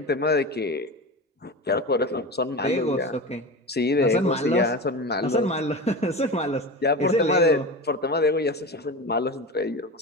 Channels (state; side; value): normal; both; correlation 0.27